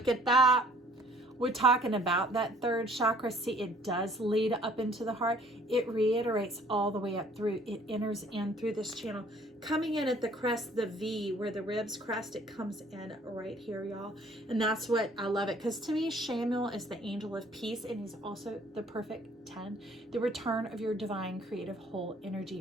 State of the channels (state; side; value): normal; both; correlation 0.57